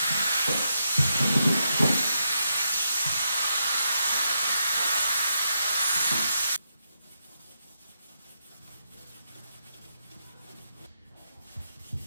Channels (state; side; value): inverted; both; correlation -0.82